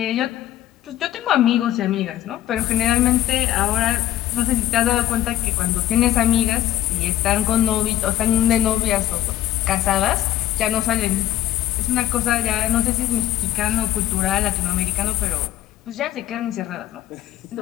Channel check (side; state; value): right; quieter; 13.3 dB